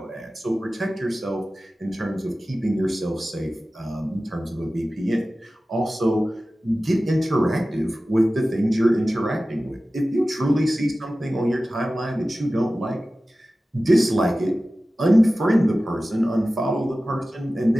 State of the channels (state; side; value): normal; both; correlation 0.96